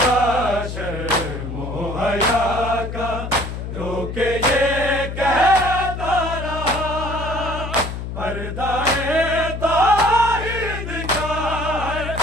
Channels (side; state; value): left; noise; hum, 6 dB below the sound